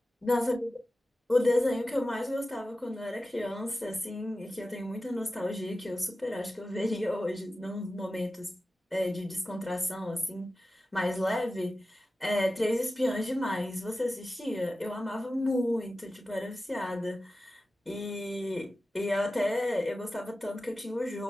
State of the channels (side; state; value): both; normal; correlation 0.94